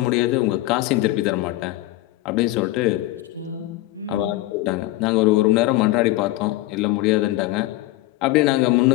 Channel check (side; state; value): right; quieter; 17.3 dB